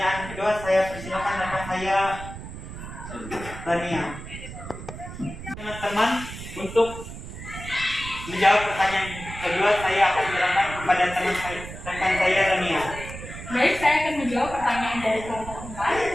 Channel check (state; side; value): noise; right; rumble, 11 dB below the sound